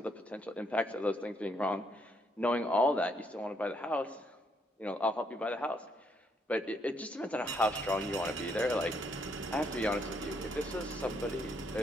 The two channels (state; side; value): normal; both; correlation 0.72